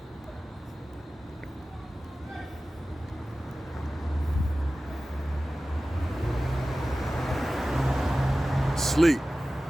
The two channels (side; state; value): both; normal; correlation 0.96